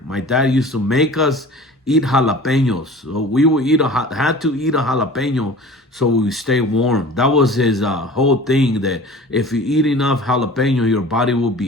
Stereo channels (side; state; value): both; normal; correlation 0.41